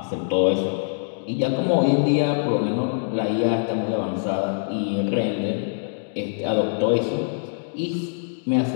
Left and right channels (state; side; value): silent; right; digital silence